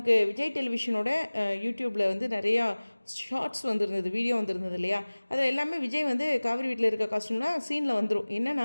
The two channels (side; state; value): both; inverted; correlation -1.00